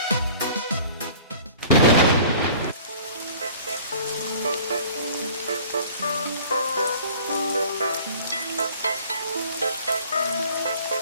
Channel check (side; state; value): both; inverted; correlation -0.48